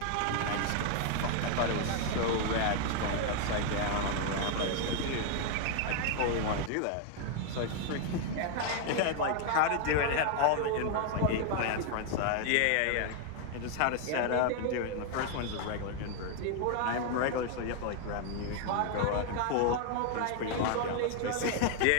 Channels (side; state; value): both; different; correlation 0.00